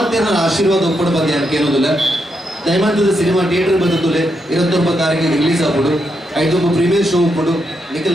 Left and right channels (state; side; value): normal; both; correlation 0.81